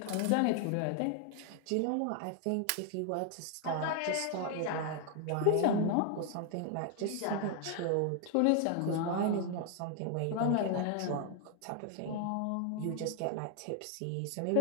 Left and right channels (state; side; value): different; both; correlation 0.00